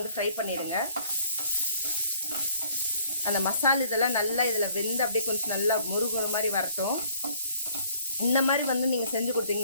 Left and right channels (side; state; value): both; inverted; correlation -0.59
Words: ஃப்ரை பண்ணிடுங்க. அந்த மசாலா இதெல்லாம் நல்லா இதில் வெந்து அப்படியே கொஞ்சம் நல்லா முருகுற மாதிரி வரட்டும். இந்த மாதிரி நீங்கள் செஞ்சு